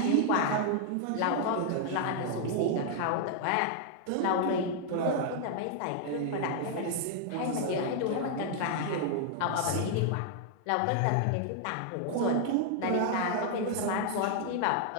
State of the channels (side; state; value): both; different; correlation 0.00